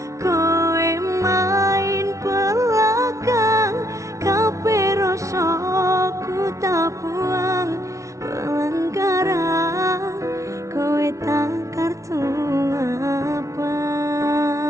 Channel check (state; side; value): late; left; 0.15 ms